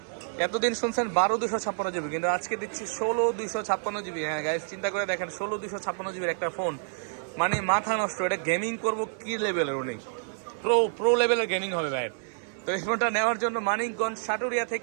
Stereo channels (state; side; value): silent; left; digital silence